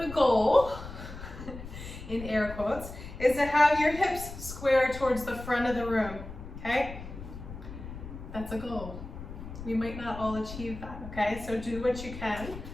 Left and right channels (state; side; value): noise; left; rumble, 11 dB below the sound